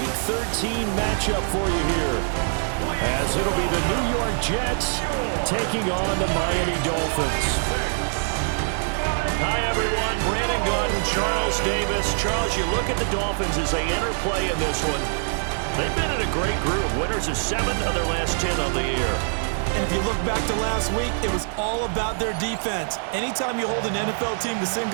13 matchup for you here, as it'll be the New York Jets taking on the Miami Dolphins. Hi, everyone. Brandon Gordon, Charles Davis. Charles, you look at the Dolphins as they enter play in this one. They've been in a great group. Winners of 7 of their last 10 on the year. And if you look back to last week, it was all about their defense. Anytime you hold an NFL team to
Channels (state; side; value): silent; left; 62 dB below the other